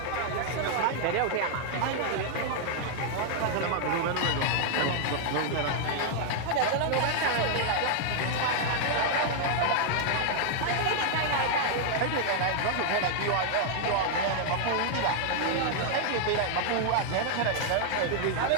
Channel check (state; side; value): different; both; correlation 0.00